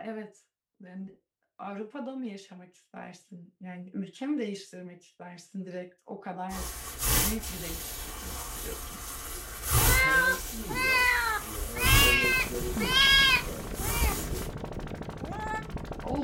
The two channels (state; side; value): identical; both; correlation 1.00